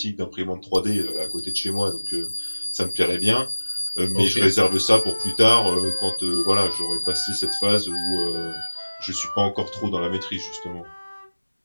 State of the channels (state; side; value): inverted; both; correlation -1.00